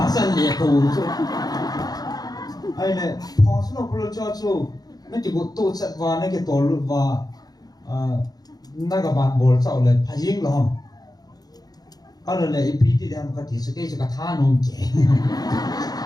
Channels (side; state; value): right; late; 0.19 ms